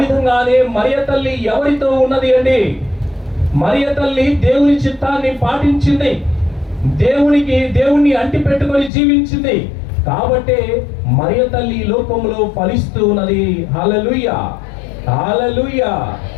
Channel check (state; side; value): drops out; right; at 8.9 s